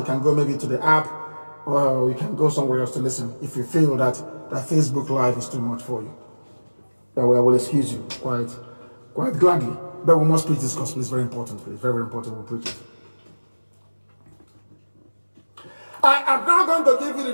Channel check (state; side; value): inverted; both; correlation -1.00